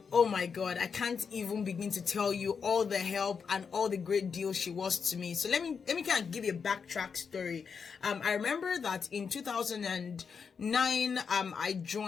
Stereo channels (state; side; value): quieter; right; 6.0 dB